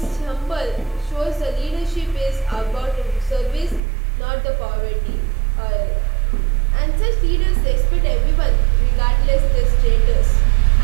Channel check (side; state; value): left; drops out; at 3.8 s